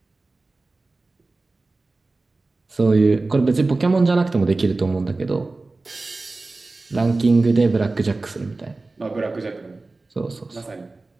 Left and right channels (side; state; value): left; quieter; 3.4 dB